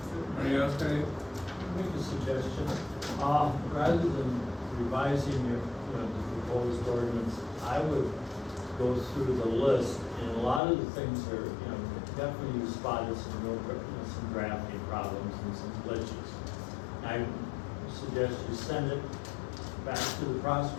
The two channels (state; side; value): drops out; right; at 10.6 s